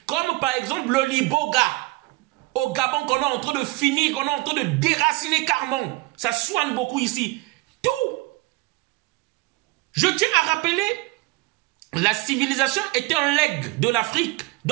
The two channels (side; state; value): left; quieter; 21.9 dB